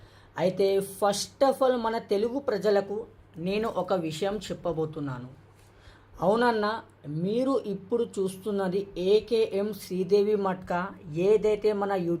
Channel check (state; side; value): identical; both; correlation 1.00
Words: అయితే ఫస్ట్ ఆఫ్ ఆల్ మన తెలుగు ప్రజలకు నేను ఒక విషయం చెప్పబోతున్నాను. అవునన్న, మీరు ఇప్పుడు చూస్తున్నది ఏకేఎం శ్రీదేవి మట్కా ఏదైతే మన